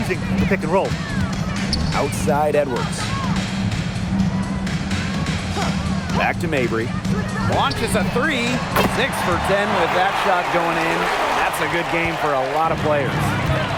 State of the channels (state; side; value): identical; both; correlation 1.00